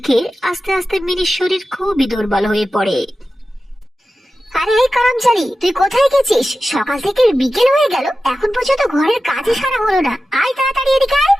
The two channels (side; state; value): both; normal; correlation 0.93